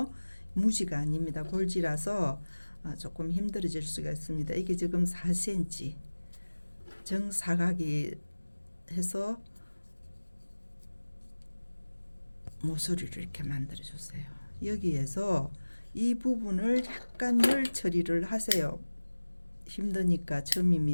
무지가 아닙니다. 골지라서 조금 힘들어질 수가 있습니다. 이게 지금 4cm 정사각이 해서 모서리를 이렇게 만들어 주세요. 여기에서 이 부분을 약간 열 처리를 하세요. 힘드니까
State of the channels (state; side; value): inverted; both; correlation -1.00